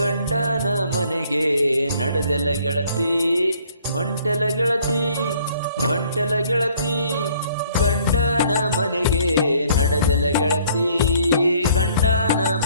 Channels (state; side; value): inverted; both; correlation -0.60